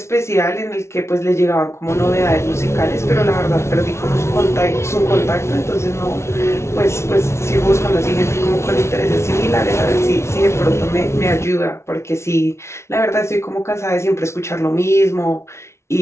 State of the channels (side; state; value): right; late; 0.13 ms